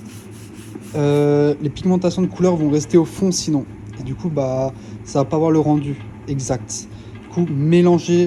les pigmentations de couleurs vont rester au fond sinon. Et du coup ça va pas avoir le rendu exact. Du coup,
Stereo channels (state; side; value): identical; both; correlation 1.00